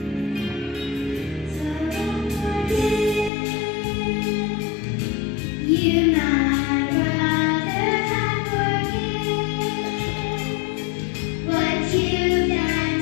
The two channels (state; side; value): drops out; right; at 3.3 s